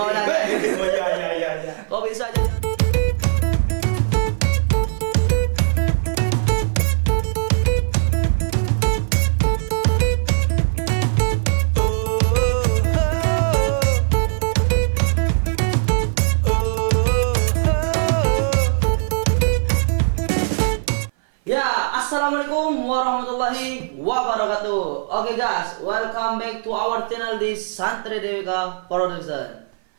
nanya. Oh iya. Kok bisa jadi? Ya, assalamualaikum warahmatullahi wabarakatuh. Oke guys, welcome back to our channel di Santri DWK Production.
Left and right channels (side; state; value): left; silent; 56 dB below the other